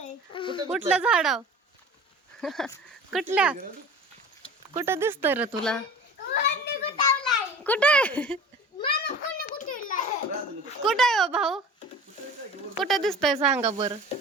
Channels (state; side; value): normal; both; correlation 0.39